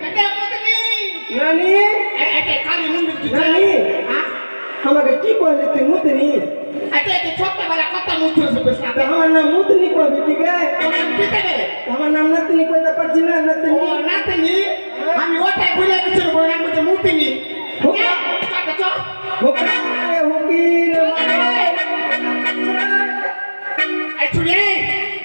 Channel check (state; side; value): inverted; both; correlation -1.00